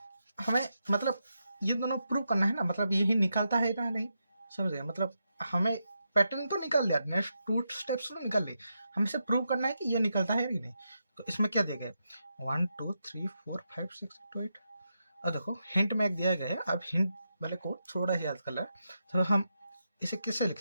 हमें मतलब ये दोनों प्रूव करना है ना, मतलब यही निकालता है ना नहीं. समझ गए. मतलब हमें पैटर्न तो निकाल लिया, नेक्स्ट 2 स्टेप्स तो निकाल ली, हमें इसे प्रूव करना है कि ये निकलता है कि नहीं. तो इसमें क्या दिया गया 1 2 3 4 5 6 2 8. अब देखो हिंट में एक दिया गया है, अब हिंट वाले को थोड़ा सा याद कर ला. तो हम इसे कैसे लिख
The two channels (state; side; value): inverted; both; correlation -0.85